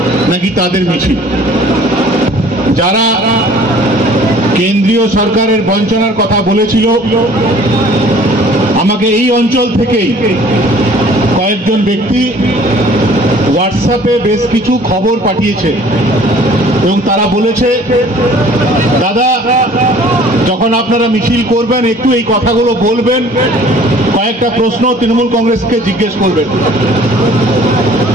নাকি তাদের মিছিল। যারা কেন্দ্রীয় সরকারের বঞ্চনার কথা বলেছিল, আমাকে এই অঞ্চল থেকেই কয়েকজন ব্যক্তি হোয়াটসঅ্যাপে বেশ কিছু খবর পাঠিয়েছে এবং তারা বলেছে, দাদা যখন আপনারা মিছিল করবেন একটু এই কথাগুলো বলবেন, কয়েকটা প্রশ্ন তৃণমূল কংগ্রেসকে জিজ্ঞেস করবেন।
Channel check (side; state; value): both; normal; correlation 0.52